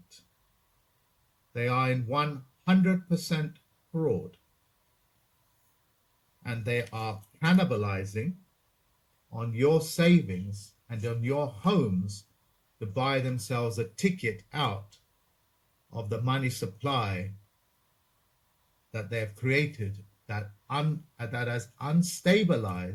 They are in 100% fraud, and they are cannibalizing on your savings and on your homes to buy themselves a ticket out of the money supply that they have created that has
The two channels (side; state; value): both; identical; correlation 1.00